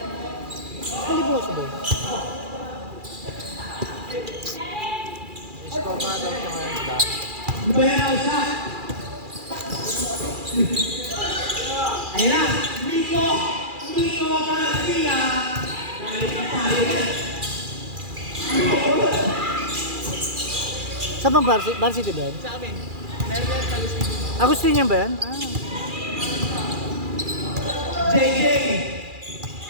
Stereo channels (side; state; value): left; late; 2.4 ms